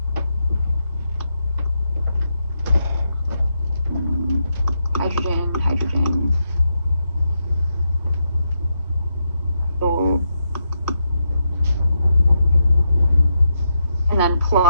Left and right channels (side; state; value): both; inverted; correlation -0.83